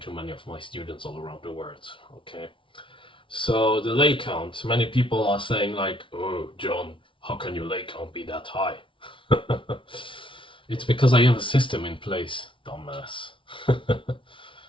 to many of my students all around the world. Okay, so the leg count, many people are saying like, oh John, how can your leg count be that high? It's because I have a system in place, dumbass.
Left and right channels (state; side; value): late; right; 0.25 ms